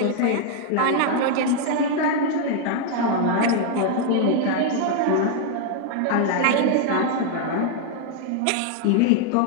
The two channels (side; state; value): both; different; correlation 0.00